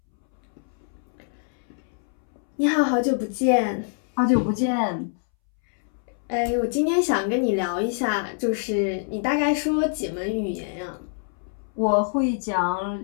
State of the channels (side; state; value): right; silent; 62 dB below the other